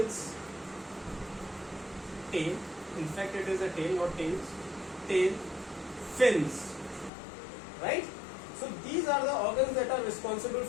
in fact it is a tail, not tails, tail, fins, right? So these are the organs that are responsible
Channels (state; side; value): drops out; right; at 7.1 s